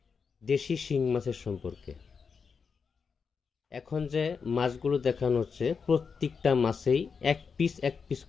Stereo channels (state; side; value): quieter; right; 5.7 dB